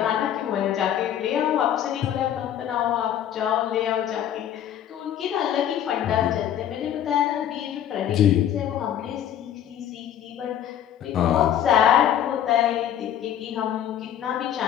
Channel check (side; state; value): right; quieter; 10.5 dB